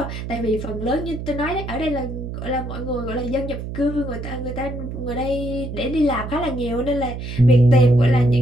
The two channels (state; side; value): noise; right; hum, 7 dB below the sound